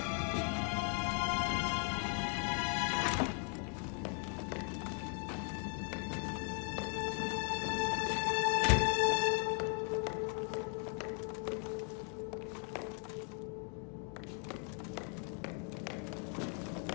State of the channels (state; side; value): quieter; right; 39.9 dB